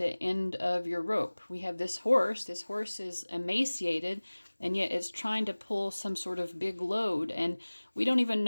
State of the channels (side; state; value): both; inverted; correlation -1.00